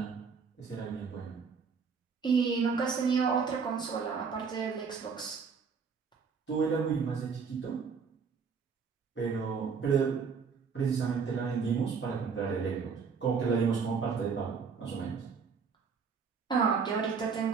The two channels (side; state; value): left; quieter; 5.7 dB